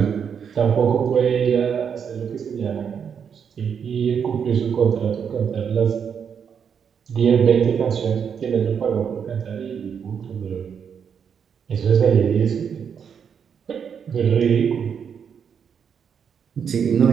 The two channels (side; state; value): left; quieter; 7.3 dB